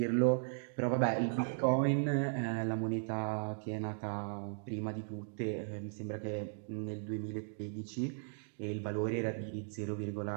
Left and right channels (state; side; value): silent; left; digital silence